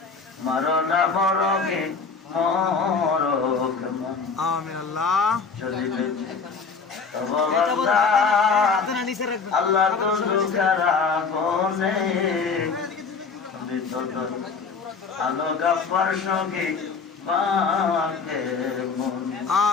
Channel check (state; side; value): quieter; right; 5.0 dB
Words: মরনা মরগে মরক আমিন আল্লাহ চলিবে তব বান্দা আল্লাহ তো দুঃখেরা গনে তুমি তো আলো গাফার সঙ্গে বাকে মন